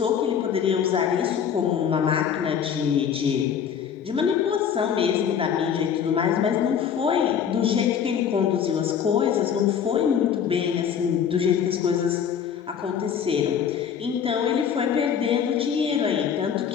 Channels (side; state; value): right; quieter; 8.0 dB